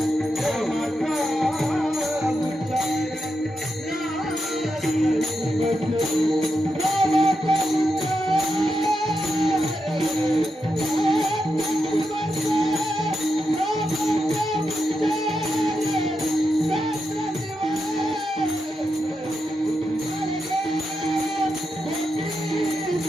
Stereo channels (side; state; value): both; normal; correlation 0.86